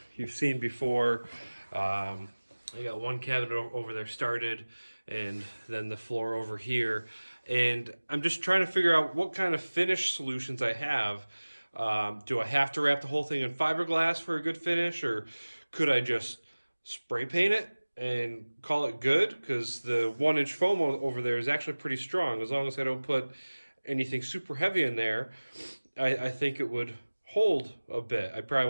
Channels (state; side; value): inverted; both; correlation -1.00